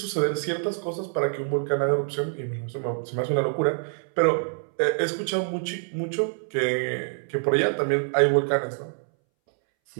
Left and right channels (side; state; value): left; silent; 61 dB below the other